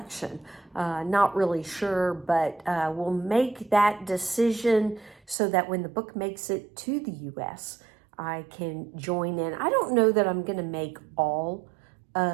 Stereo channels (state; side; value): drops out; left; at 5.4 s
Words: Not really sure, but we'll make that decision so that when the book makes it to the US, I can join in. I don't know that I'm going to make all